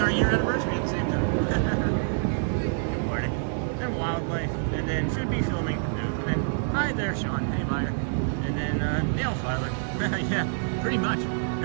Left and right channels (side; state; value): left; silent; 60 dB below the other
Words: year anniversary at the same time. Good morning. Then Wildlife, and then should be filming. And then, hi there, Sean. Hey, buyer. And then nail filer. Yeah, pretty much.